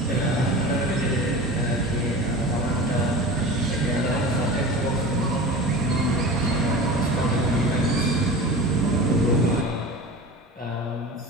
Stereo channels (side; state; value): both; normal; correlation 0.33